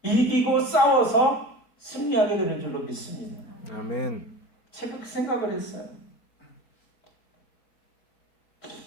이기고 싸워서 승리하게 되는 줄로 믿습니다. 아멘. 제가 그 생각을 했어요.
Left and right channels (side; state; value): right; late; 5.0 ms